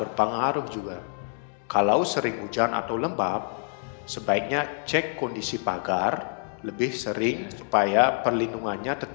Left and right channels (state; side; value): silent; right; 60 dB below the other